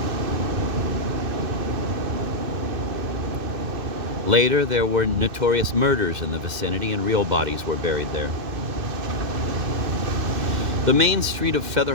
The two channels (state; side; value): late; left; 2.6 ms